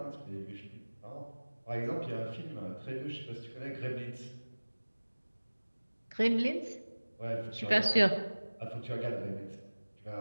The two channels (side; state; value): both; inverted; correlation -1.00